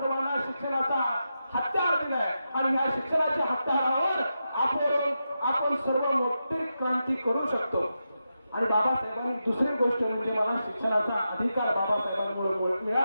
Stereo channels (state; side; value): inverted; both; correlation -0.88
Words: शिक्षणाचा हत्यार दिलाय आणि या शिक्षणाच्या हत्यारावर आपण सर्व मोठी क्रांती करू शकतो. आणि बाबासाहेबांनी दुसरी गोष्ट म्हणजे मला शिक्षणाचा अधिकार बाबासाहेबांमुळे